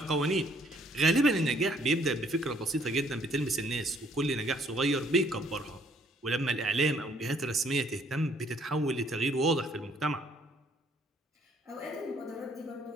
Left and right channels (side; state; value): both; normal; correlation 0.64